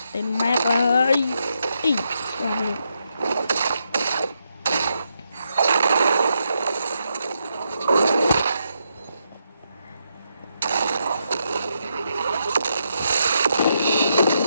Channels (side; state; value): both; inverted; correlation -0.81